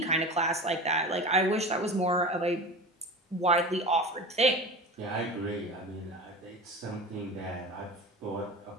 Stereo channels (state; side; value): normal; both; correlation 0.31